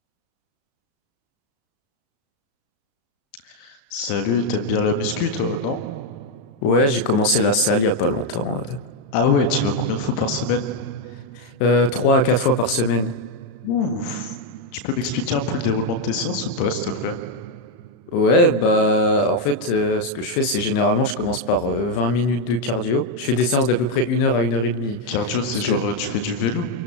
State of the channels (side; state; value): right; late; 36 ms